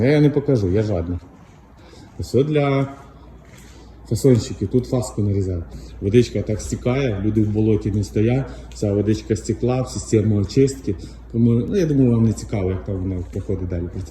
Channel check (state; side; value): identical; both; correlation 1.00